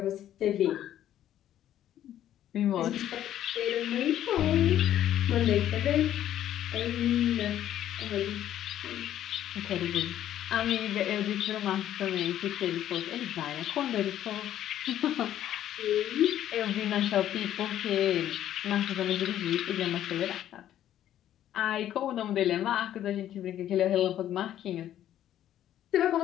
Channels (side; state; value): right; quieter; 11.6 dB